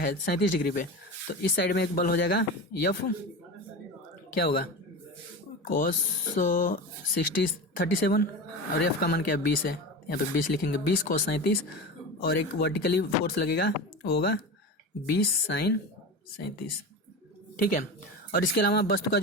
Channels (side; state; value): both; normal; correlation 0.27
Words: 37 डिग्री पे, तो इस साइड में एक बल हो जाएगा F, क्या होगा cos 37, और F का मान क्या है 20 है, यहाँ पे 20 लिखेंगे, 20 cos 37, और एक वर्टिकली फोर्स लगेगा वो होगा 20 sin 37, ठीक है। और इसके अलावा वस्तु का